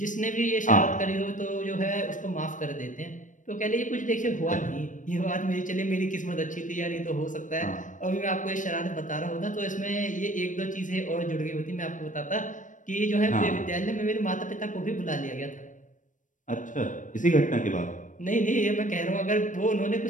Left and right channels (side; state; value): right; late; 0.37 ms